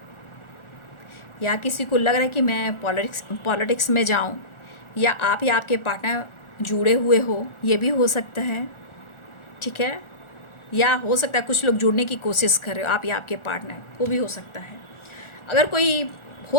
या किसी को लग रहा है कि मैं पॉलिटिक्स में जाऊं, या आप या आपके पार्टनर जुड़े हुए हो, ये भी हो सकता है। ठीक है, या हो सकता है कुछ लोग जुड़ने की कोशिश कर रहे हो, आप या आपके पार्टनर, वो भी हो सकता है। अगर कोई,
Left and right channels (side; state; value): right; late; 1.4 ms